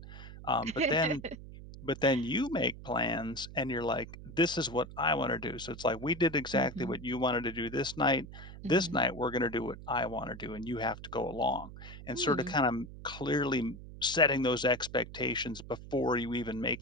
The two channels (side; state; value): right; noise; hum, 14 dB below the sound